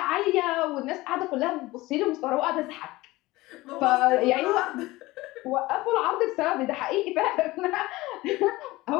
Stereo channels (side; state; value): right; quieter; 19.5 dB